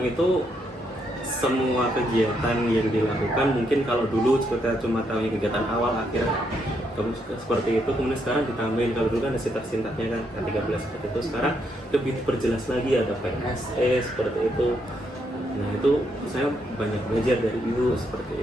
semua kegiatan yang dilakukan mungkin kalau dulu kita cuma tahu kegiatan awal akhir seperti itu, kemudian sekarang ditambahin, kalau dulu kan ada sintak-sintaknya kan 13 seperti itu, sekarang lebih diperjelas lagi, ada PSE seperti itu. Nah itu saya banyak belajar dari Ibu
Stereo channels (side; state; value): both; normal; correlation 0.77